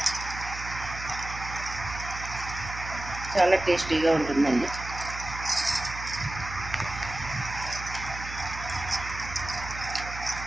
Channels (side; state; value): right; noise; hum, 10 dB below the sound